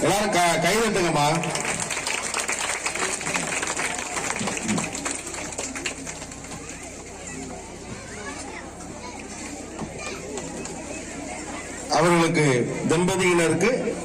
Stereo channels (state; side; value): identical; both; correlation 1.00